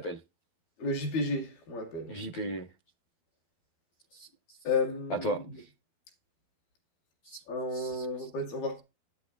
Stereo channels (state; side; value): late; right; 12 ms